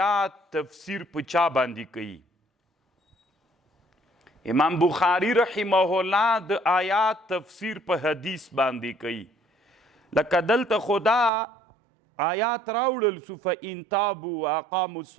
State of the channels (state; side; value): drops out; left; at 11.3 s